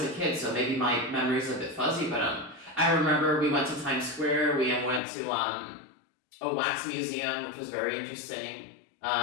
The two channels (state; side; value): drops out; right; at 5.0 s